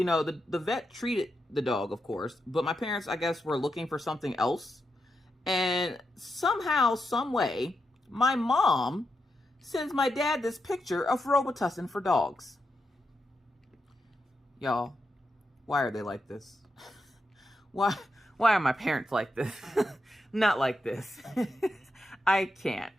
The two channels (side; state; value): both; normal; correlation 0.86